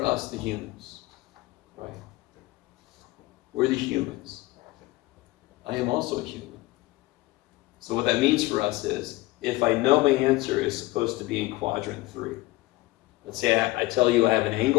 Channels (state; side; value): quieter; right; 20.0 dB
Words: us, the humans? Right? We're the humans. I am also a human. So what that means for us is, if I know my answer is supposed to be in quadrant 3, let's say I tell you I have an